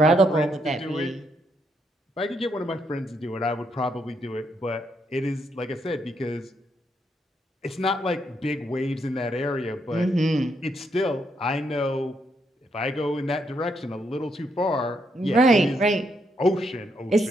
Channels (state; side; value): normal; both; correlation 0.77